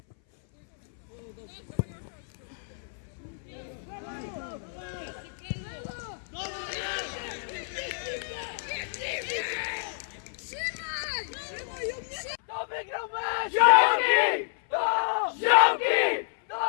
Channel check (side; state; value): right; silent; 58 dB below the other